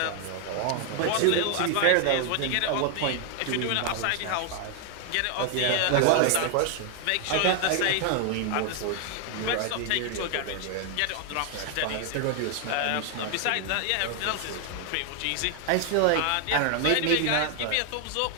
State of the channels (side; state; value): both; different; correlation 0.00